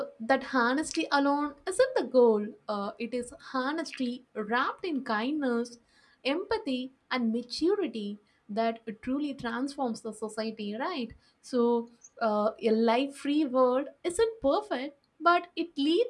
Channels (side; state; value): both; identical; correlation 1.00